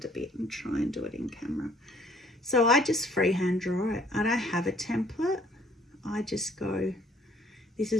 a bit and try and do it in camera. So I just freehand draw it. I don't have a template. I just go, this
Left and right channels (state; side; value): normal; both; correlation 0.60